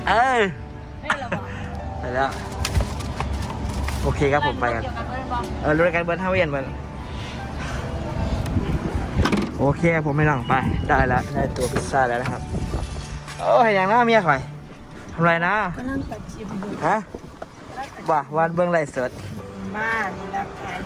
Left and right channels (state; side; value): identical; both; correlation 1.00